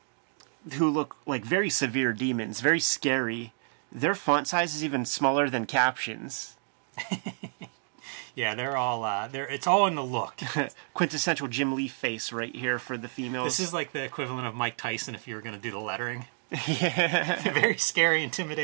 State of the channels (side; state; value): left; silent; 58 dB below the other